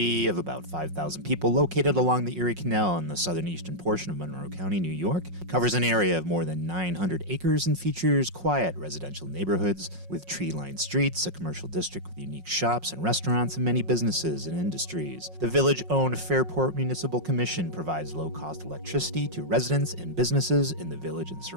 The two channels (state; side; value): late; left; 5.5 ms